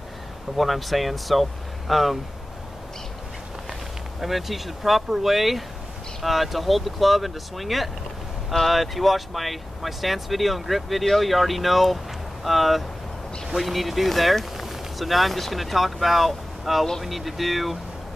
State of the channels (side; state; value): both; normal; correlation 0.96